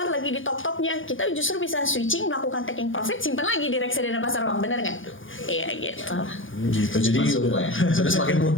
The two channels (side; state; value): right; late; 0.58 ms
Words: lagi di top-topnya, kita justru bisa switching, melakukan taking profit, simpan lagi di reksadana pasar uang, bener nggak? Iya gitu. Gitu, jadi sudah semakin